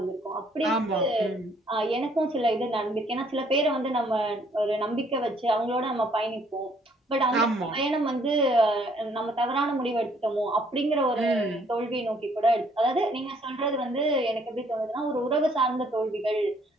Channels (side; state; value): both; normal; correlation 0.64